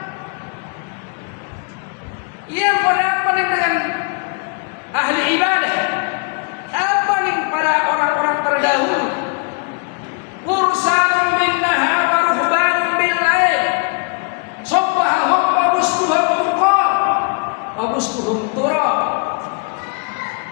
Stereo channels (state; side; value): quieter; right; 35.3 dB